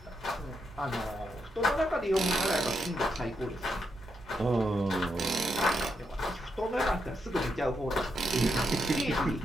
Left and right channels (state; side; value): normal; both; correlation 0.82